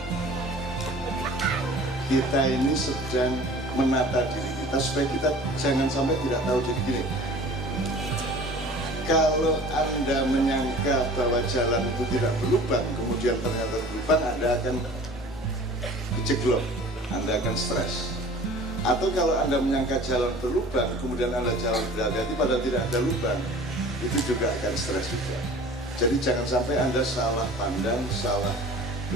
kita ini sedang menata diri kita supaya kita jangan sampai tidak tahu diri gini. Kalau Anda menyangka bahwa jalan itu tidak berlubang, kemudian ternyata berlubang, Anda akan kejeglok, Anda akan stres. Atau kalau Anda menyangka jalan berlubang, kemudian Anda jalan berhati-hati padahal tidak ada lubang, itu juga akan stres juga. Jadi jangan sampai Anda salah pandang, salah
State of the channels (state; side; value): normal; both; correlation 0.45